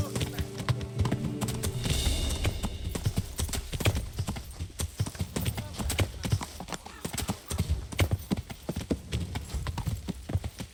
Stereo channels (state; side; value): identical; both; correlation 1.00